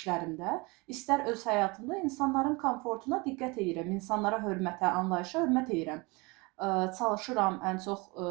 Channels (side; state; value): left; quieter; 26.3 dB